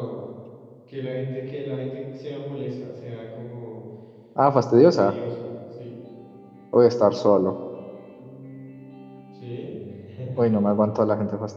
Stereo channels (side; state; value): both; identical; correlation 1.00